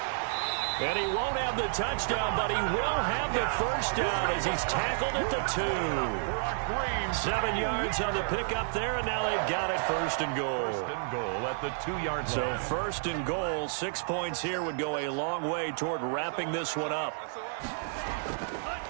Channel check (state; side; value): silent; left; digital silence